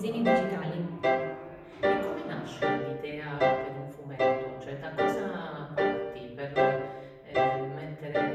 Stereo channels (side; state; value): both; identical; correlation 1.00